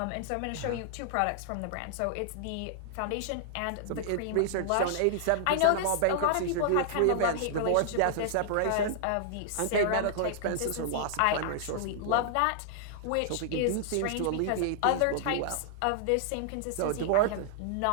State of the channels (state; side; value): different; both; correlation -0.01